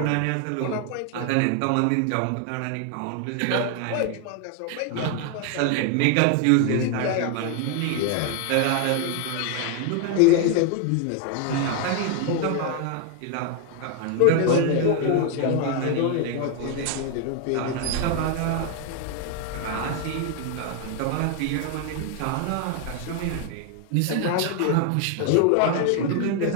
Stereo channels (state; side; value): different; both; correlation 0.00